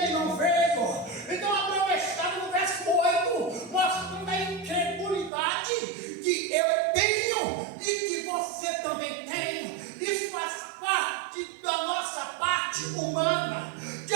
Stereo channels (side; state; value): left; drops out; at 5.3 s